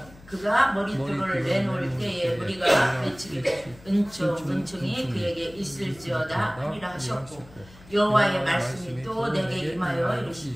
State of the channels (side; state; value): left; noise; hum, 22 dB below the sound